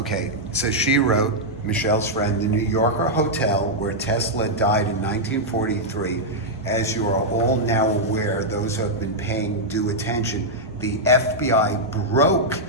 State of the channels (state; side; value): normal; both; correlation -0.05